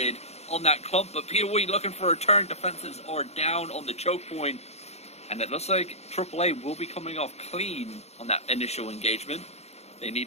on that clump. But POE looking for a turn. Defenses are down on the choke point. And it looks like AAA will be coming off clean on that initial engagement. They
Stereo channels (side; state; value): right; late; 0.31 ms